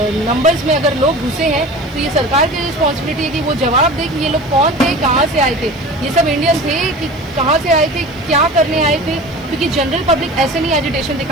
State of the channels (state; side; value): noise; left; hiss, 30 dB below the sound